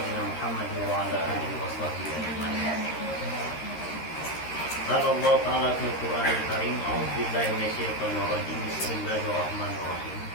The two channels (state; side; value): late; right; 13 ms